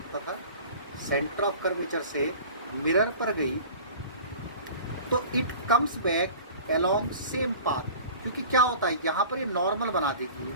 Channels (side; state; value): both; inverted; correlation -0.42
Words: था, सेंटर ऑफ कर्वेचर से मिरर पर गई तो it comes back along same path, क्योंकि क्या होता है यहाँ पर ये नॉर्मल बना देगी,